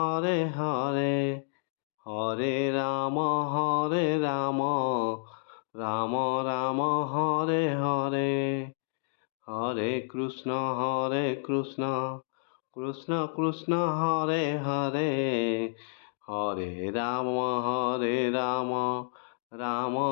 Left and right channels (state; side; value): silent; right; digital silence